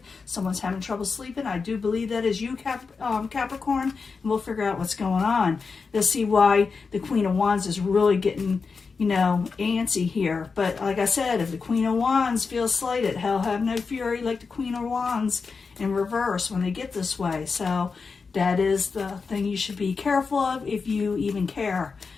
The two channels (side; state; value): right; quieter; 4.9 dB